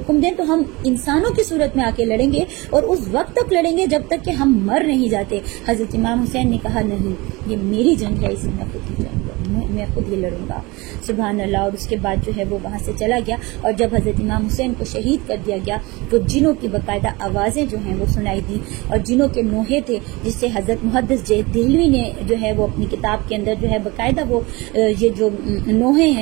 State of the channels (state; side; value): quieter; left; 23.7 dB